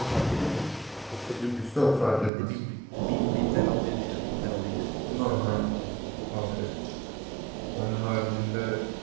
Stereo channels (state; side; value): drops out; left; at 2.3 s